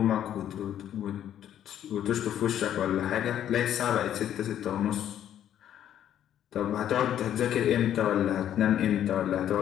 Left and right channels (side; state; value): right; quieter; 10.6 dB